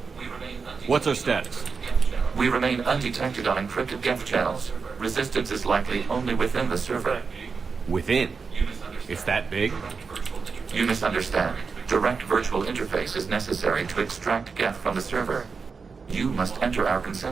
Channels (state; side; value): quieter; left; 5.1 dB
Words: What's our status? We remain undetected on encrypted Geth channels. Resistance is likely only within the server. Within? It's that big? You misunderstand. Direct virtual interface is necessary to extract Geth from the server. You must enter our